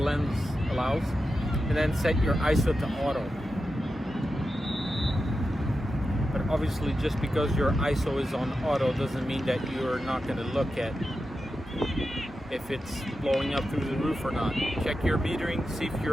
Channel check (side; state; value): both; normal; correlation 0.90